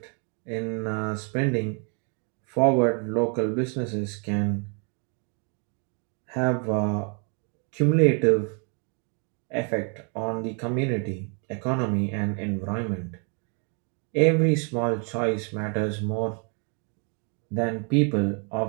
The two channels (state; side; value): quieter; left; 37.7 dB